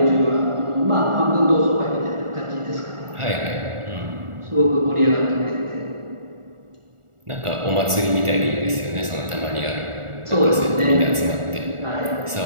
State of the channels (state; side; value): late; left; 1.4 ms